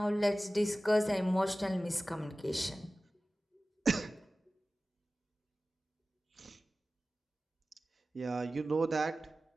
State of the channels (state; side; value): normal; both; correlation 0.96